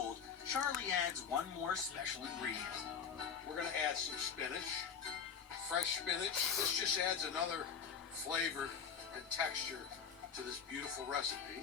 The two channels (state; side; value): quieter; right; 6.8 dB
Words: Charlie adds one more special ingredient. We're going to add some spinach, fresh spinach. This just adds another flavor and texture to this beautiful recipe.